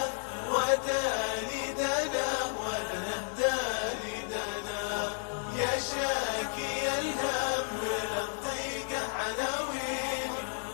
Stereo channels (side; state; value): right; silent; 56 dB below the other